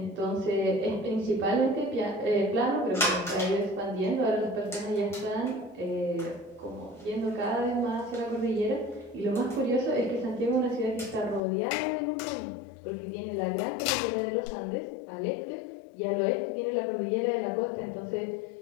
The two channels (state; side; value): drops out; right; at 11.4 s